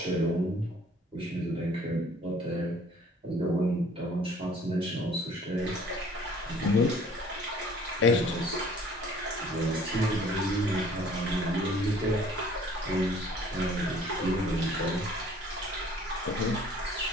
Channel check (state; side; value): normal; both; correlation 0.54